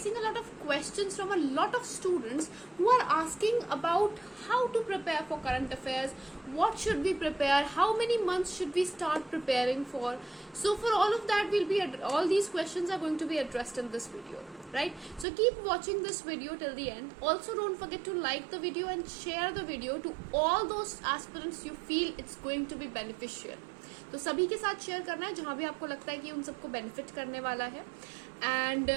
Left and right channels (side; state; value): left; drops out; at 15.2 s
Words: a lot of questions from a lot of students who are asking about how to prepare for current affairs, what should we prepare, how many months should we start preparing for. So for all of that, all these questions are going to be addressed in this video, right? So keep watching this video till the end. Also don't forget to like the video and share the video to all those aspirants you feel it's going to be beneficial. तो सभी के साथ share करना है जहां भी आपको लगता है कि उन सबको बेनिफिट करने वाला है. And